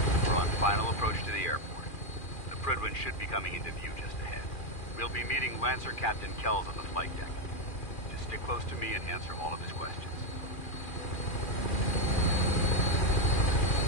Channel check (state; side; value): late; right; 2.4 ms